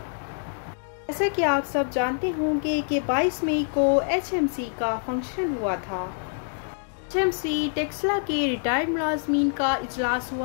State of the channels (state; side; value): silent; right; 61 dB below the other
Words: जैसा कि आप सब जानते होंगे कि 22 मई को एचएमसी का फंक्शन हुआ था। एचएमसी टेक्सला के रिटायर्ड मुलाजमीन का इजलास